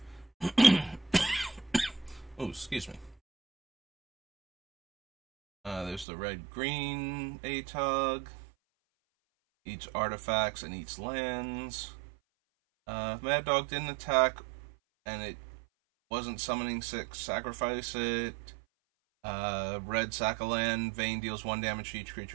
Oh, excuse me. There's the red-green ATOG. Eats artifacts and eats lands. If Mad Dog didn't attack and it wasn't summoning 6, sacrifice it. Red sack a land. Vayne deals 1 damage to each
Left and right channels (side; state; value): left; drops out; at 6.1 s